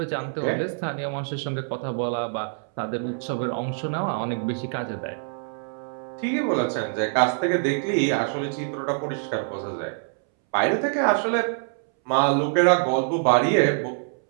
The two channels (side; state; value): left; silent; 62 dB below the other